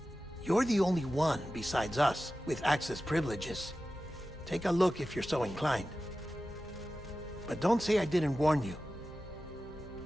You're the only one besides us with access privileges. Take a look if you're so inclined. But don't say I didn't warn you.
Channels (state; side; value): normal; both; correlation 0.94